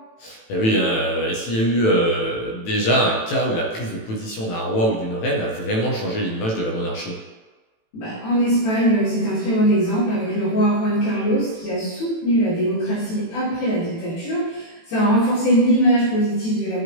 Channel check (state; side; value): late; right; 18 ms